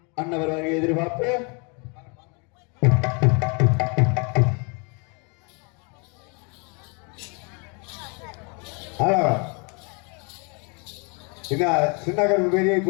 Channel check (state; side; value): quieter; right; 33.4 dB